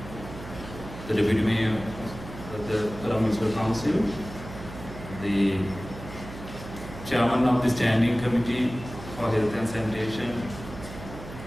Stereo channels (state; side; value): noise; right; hum, 13 dB below the sound